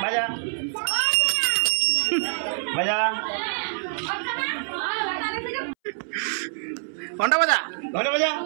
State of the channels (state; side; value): silent; left; 62 dB below the other